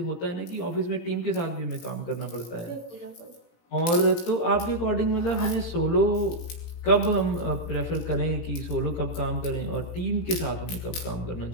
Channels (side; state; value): right; late; 18 ms